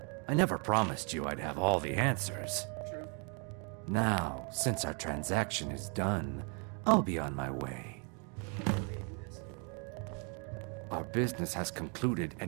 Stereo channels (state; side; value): quieter; left; 36.7 dB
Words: I never promised you I'd have all the answers. True. Now, since our transaction is done, I'll be on my way. Our business has concluded,